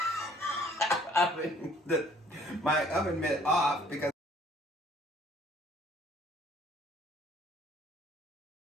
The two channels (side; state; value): both; normal; correlation 0.58